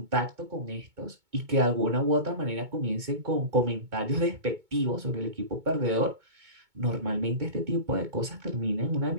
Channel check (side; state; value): left; late; 2.2 ms